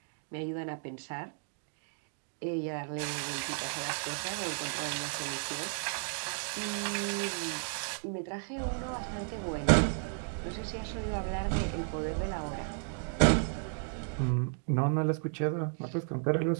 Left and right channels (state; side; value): silent; left; 55 dB below the other